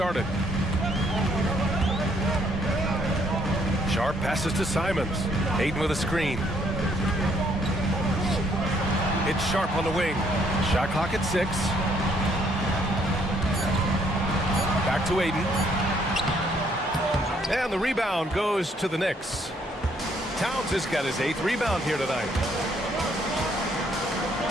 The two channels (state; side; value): normal; both; correlation 0.68